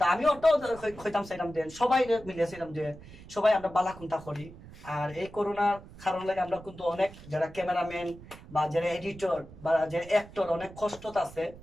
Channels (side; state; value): right; noise; rumble, 18 dB below the sound